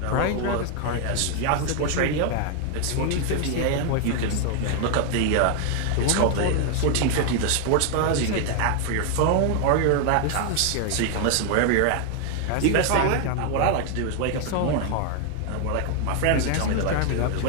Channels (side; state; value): both; different; correlation 0.01